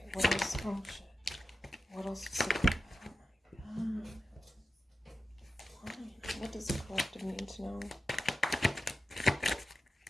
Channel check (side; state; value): both; normal; correlation 0.92